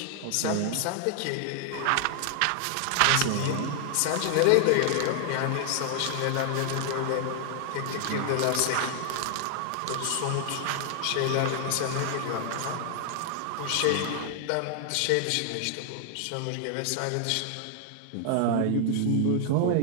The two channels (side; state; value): both; different; correlation 0.00